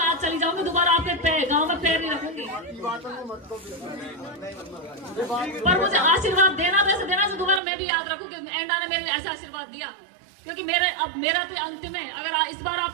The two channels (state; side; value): drops out; left; at 7.6 s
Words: आज चली जाऊंगी, दोबारा आपके गांव में पैर नहीं रखूंगी। पर मुझे आशीर्वाद देना तो ऐसे देना से दोबारा मैं भी याद रखूंगी एंडा ने मेरे ऐसा आशीर्वाद दिया, क्योंकि मेरा तो अंतिम है। अगर इस बार